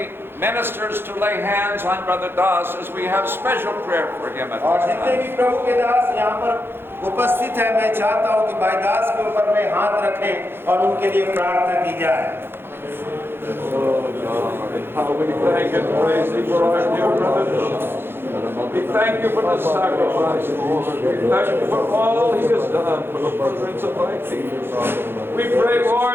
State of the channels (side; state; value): left; late; 0.11 ms